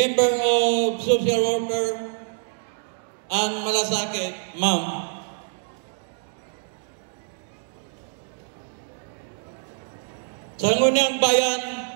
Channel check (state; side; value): silent; left; digital silence